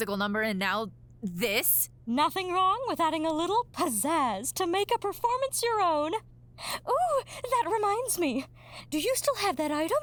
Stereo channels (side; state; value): both; identical; correlation 1.00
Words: number and now this? Nothing wrong with adding a little pizzazz to make a performance your own. Ooh, that reminds me. Do you still have that item?